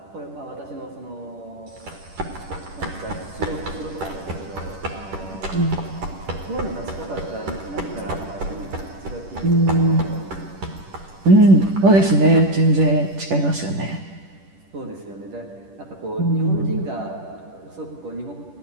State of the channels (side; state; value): left; late; 10 ms